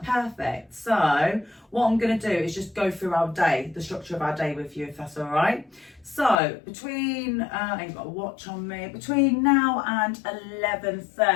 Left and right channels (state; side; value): drops out; right; at 6.4 s